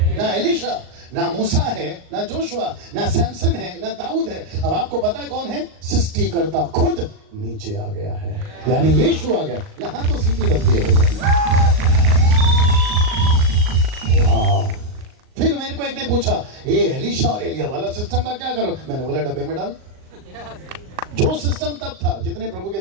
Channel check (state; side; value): late; left; 38 ms